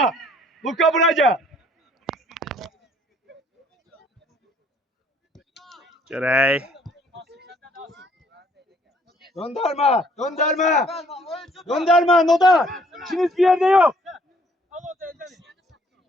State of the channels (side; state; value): both; normal; correlation 0.62